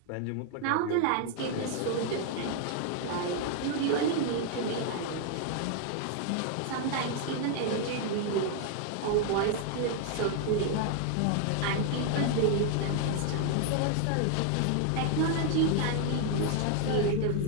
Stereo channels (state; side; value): different; both; correlation 0.00